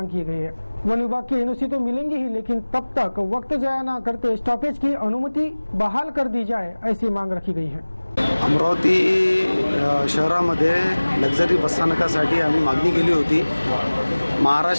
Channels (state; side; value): inverted; both; correlation -1.00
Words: की गई है। वन विभाग की NOC तो मिलेंगी ही, लेकिन तब तक वक्त जाया न करते स्टॉपेज की अनुमति बहाल कर दी जाए, ऐसी मांग रखी गई है। अमरावती शहरामध्ये लक्झरी बसस्थानकासाठी आम्ही मागणी केली होती।